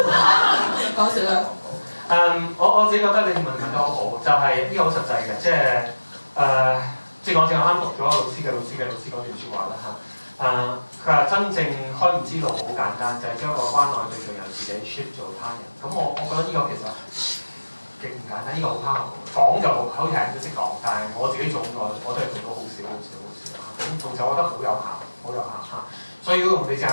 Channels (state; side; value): inverted; both; correlation -1.00